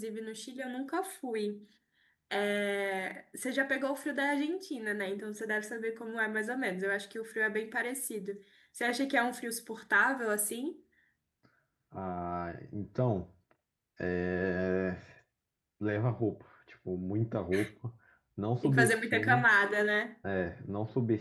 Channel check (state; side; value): identical; both; correlation 1.00